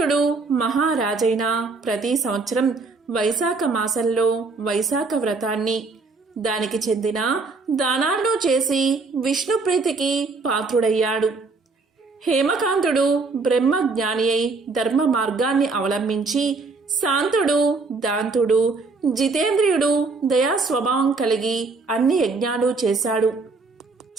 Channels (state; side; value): quieter; left; 4.0 dB